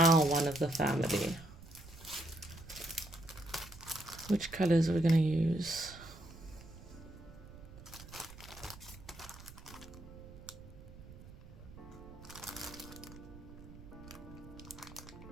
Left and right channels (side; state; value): right; noise; rumble, 16 dB below the sound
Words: one of the family. Which colors are we gonna use?